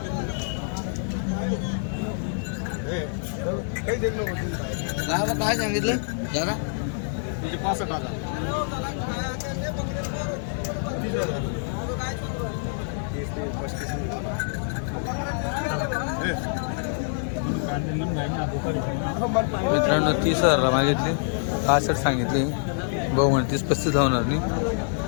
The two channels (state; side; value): silent; right; 60 dB below the other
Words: काही देत नको काय सांगितलं जरा तुझे 65 हजार मित्रांनो 30,000 मागितले. 65 सांगितले. भाऊ म्हणे 30-35 होणार नाही.